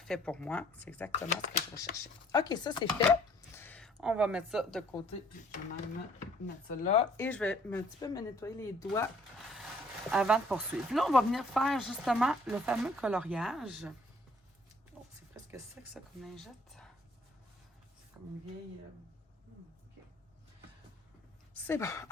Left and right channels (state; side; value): normal; both; correlation 0.60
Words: pour moi. C'est exactement ce que je recherchais. OK, ça, c'est fait. On va mettre ça de côté, puis je vais même mettre ça là. Et je vais un petit peu me nettoyer les doigts avant de poursuivre. Là, on va venir faire justement le fameux coloriage. Oh, c'est presque sec, ça, comme lingette. C'est comme une vieille... OK. C'est bon.